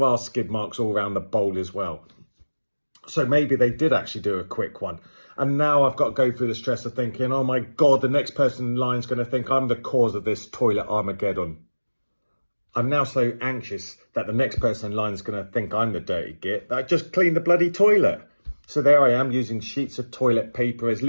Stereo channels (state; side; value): inverted; both; correlation -1.00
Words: are skid marks all around the bowl as well. So maybe they did actually do a quick one. And now I've got to go through the stress of thinking, oh my God, the next person in line is going to think I'm the cause of this toilet Armageddon. I'm now so anxious that the next person in line is going to think I'm the dirty git that I just cleaned the bloody toilet. So there I am using sheets of toilet paper as